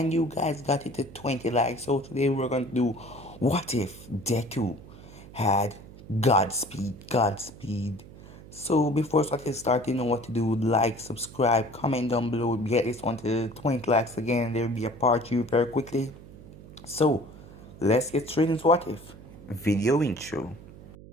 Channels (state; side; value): noise; right; hum, 18 dB below the sound